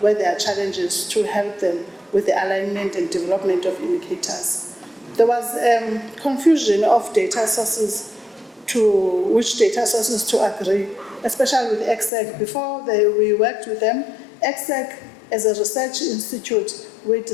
where there are challenges to help them with the alignment and development of indicators. There was confusion of data sources to which data sources to agree, especially with EXEC. Before we worked with them, EXEC as a research institute, we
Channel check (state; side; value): drops out; right; at 12.1 s